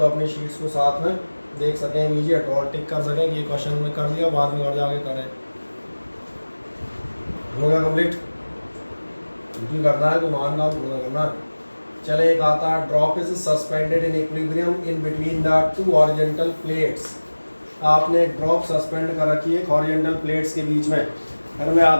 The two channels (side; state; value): both; inverted; correlation -1.00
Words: अपनी शीट्स को साथ में देख सकें इमीडिएट और टिक कर सकें कि ये क्वेश्चन में कर दिया, बाद में घर जाके करें। हो गया कंप्लीट? क्योंकि करना है तो मान काम पूरा करना है। चले एक आता है drop is suspended in equilibrium in between the 2 horizontal plates. आपने ड्रॉप सस्पेंड कर रखी है हॉरिजॉन्टल प्लेट्स के बीच में। फिर मैं याद